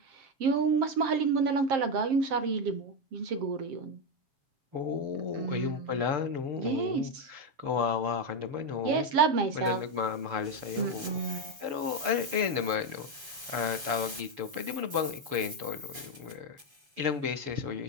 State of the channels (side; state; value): left; late; 7.1 ms